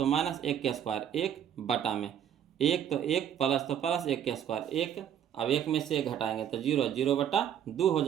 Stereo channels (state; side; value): quieter; left; 9.4 dB